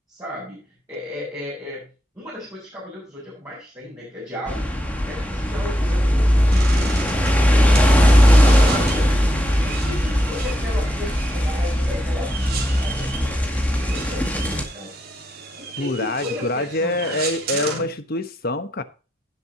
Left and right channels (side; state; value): both; normal; correlation 0.83